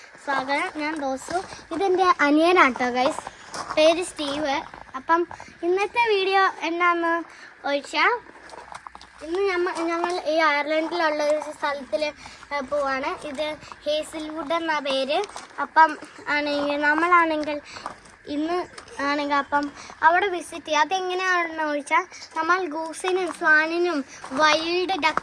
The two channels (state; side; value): identical; both; correlation 1.00